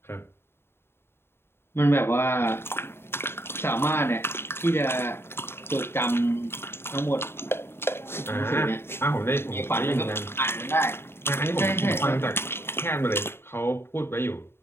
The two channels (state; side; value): late; right; 0.11 ms